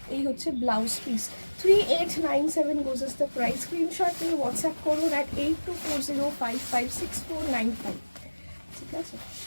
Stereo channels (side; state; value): both; inverted; correlation -1.00